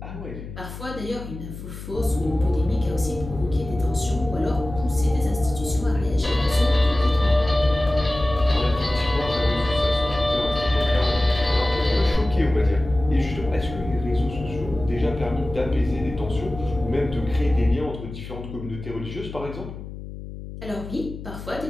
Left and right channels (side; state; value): left; noise; hum, 11 dB below the sound